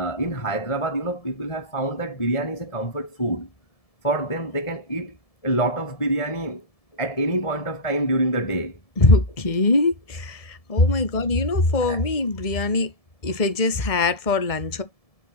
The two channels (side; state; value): right; late; 1.7 ms